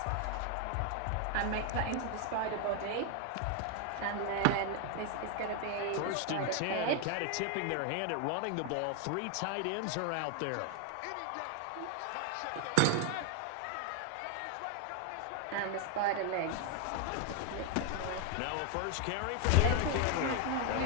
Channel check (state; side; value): different; both; correlation 0.01